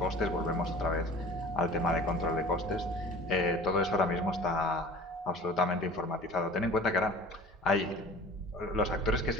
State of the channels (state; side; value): normal; both; correlation 0.42